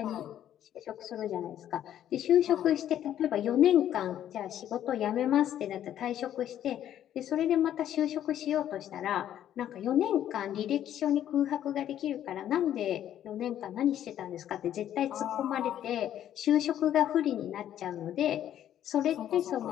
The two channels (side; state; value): right; quieter; 11.1 dB